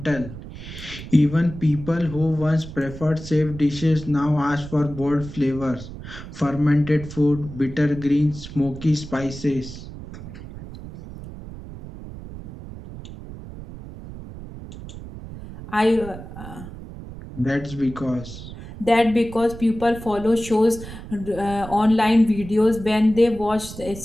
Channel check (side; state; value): right; noise; rumble, 13 dB below the sound